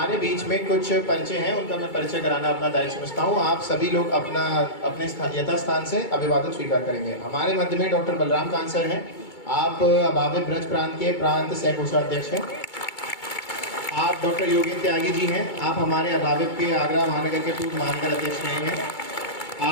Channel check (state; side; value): late; right; 2.3 ms